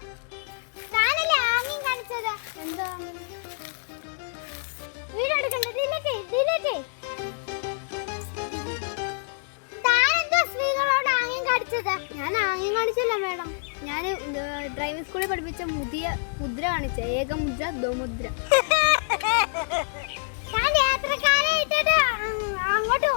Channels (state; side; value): silent; right; digital silence